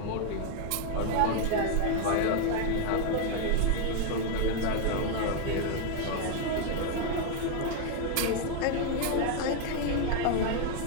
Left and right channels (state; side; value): different; both; correlation 0.00